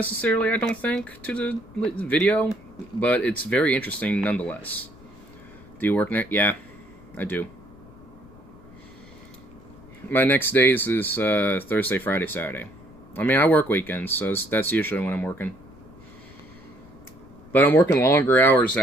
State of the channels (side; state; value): left; noise; rumble, 23 dB below the sound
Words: I don't think to the video, but it's very interesting nonetheless. Do you work next? Yeah, I do. My next days is Thursday, Friday, Saturday. I mean, I work weekends, so that's usually when I'm working. But I'm working longer hours,